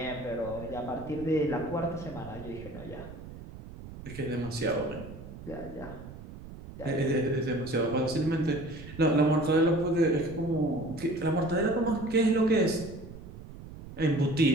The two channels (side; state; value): right; noise; rumble, 14 dB below the sound